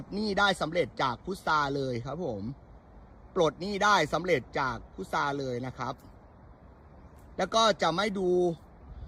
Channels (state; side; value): identical; both; correlation 1.00